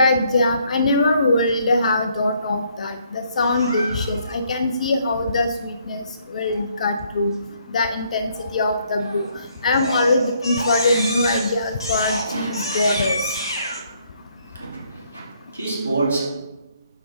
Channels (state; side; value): inverted; both; correlation -0.68